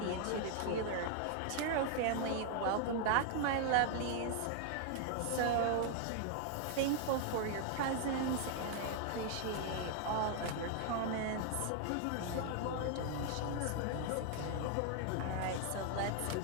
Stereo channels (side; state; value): both; different; correlation 0.00